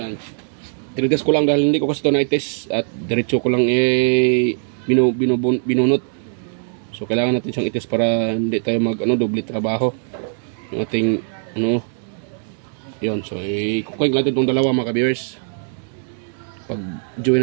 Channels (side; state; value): left; silent; digital silence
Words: tinitest ko lang dahil hindi ko kasi ito na-test at diretso ko lang binunot. So kailangan natin siyang itest para hindi tayo doble trabaho. Yung ating yun. So i-connect natin itong dalawa mga ka-viewers. Pag join